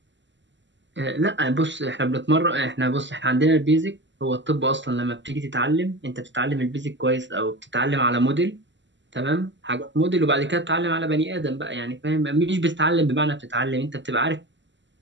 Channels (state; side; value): late; left; 0.53 ms